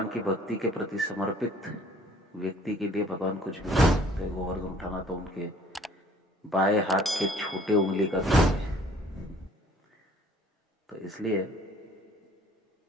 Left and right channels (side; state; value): both; normal; correlation 0.56